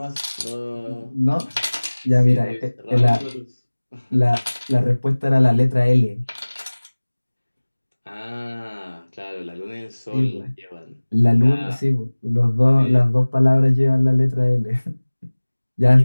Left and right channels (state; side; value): inverted; both; correlation -1.00